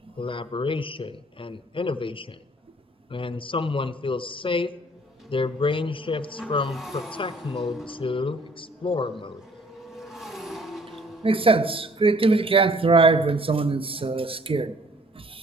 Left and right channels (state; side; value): normal; both; correlation 0.58